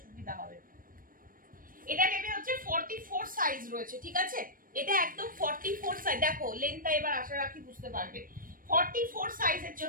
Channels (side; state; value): left; late; 0.41 ms